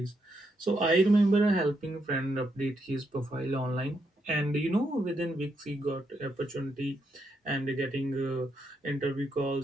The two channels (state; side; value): normal; both; correlation 0.79